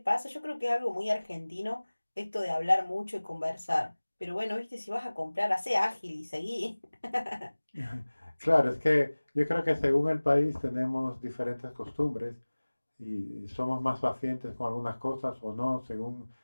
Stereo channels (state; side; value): inverted; both; correlation -1.00